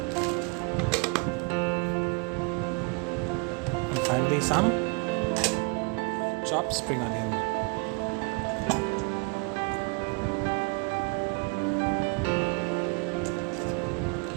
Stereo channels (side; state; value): left; quieter; 30.5 dB